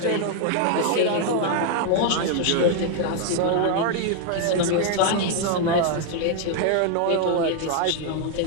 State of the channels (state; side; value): different; both; correlation 0.00